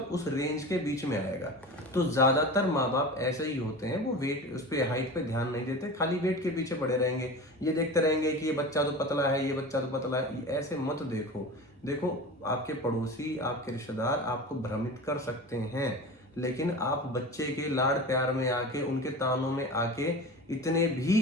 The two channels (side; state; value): both; normal; correlation 0.32